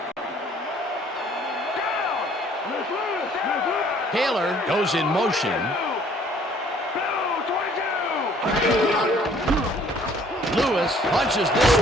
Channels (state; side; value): normal; both; correlation 0.58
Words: Taylor goes in motion. Lewis punches this